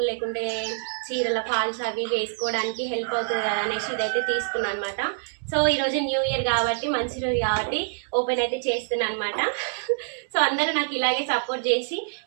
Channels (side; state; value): left; silent; digital silence